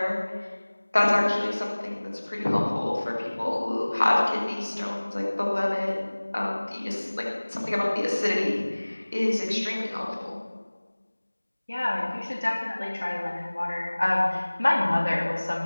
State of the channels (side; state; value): both; inverted; correlation -1.00